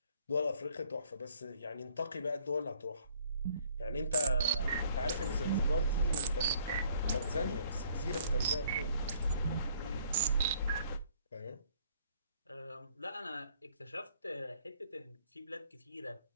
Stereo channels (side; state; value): both; inverted; correlation -0.61